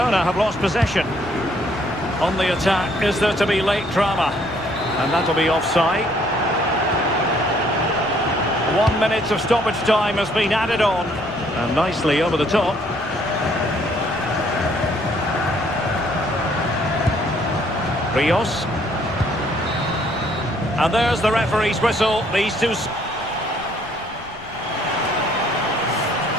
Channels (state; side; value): noise; left; rumble, 21 dB below the sound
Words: have lost possession. On the attack, is there to be late drama? And that'll be offside. 1 minute of stoppage time has been added on. And nicely over the top. Rios. And there's the referee's whistle. These two...